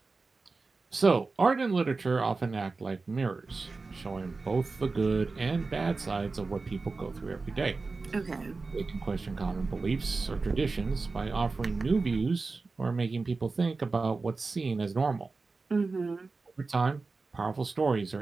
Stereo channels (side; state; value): left; quieter; 3.9 dB